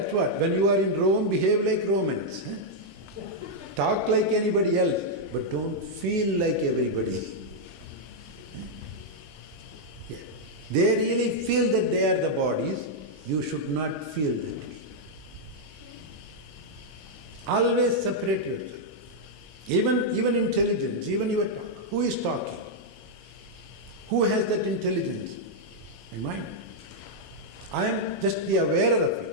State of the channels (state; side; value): normal; both; correlation -0.04